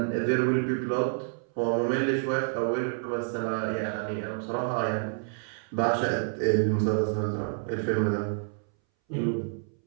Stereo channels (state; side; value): silent; left; 59 dB below the other